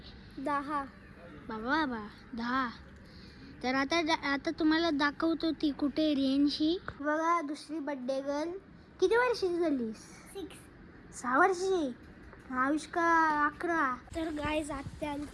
10. बाबा 10. तर आता तुम्हाला दाखवतो ती कुठे रेंजशी. बघा दुसरी बर्थडे गर्ल. किती वर्षाची झाली? 6 वर्षाची. आयुष्का 11. तर गाईज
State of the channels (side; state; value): both; identical; correlation 1.00